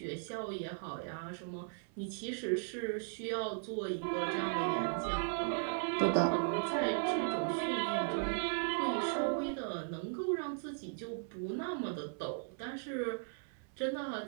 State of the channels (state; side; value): silent; left; 53 dB below the other